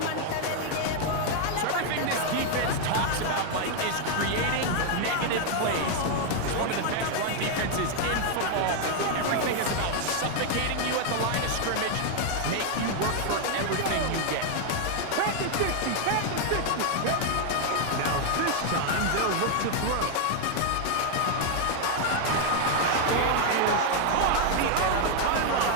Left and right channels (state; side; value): different; both; correlation 0.00